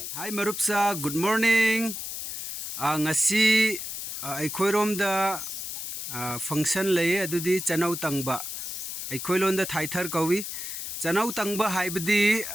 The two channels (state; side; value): noise; left; hiss, 6 dB below the sound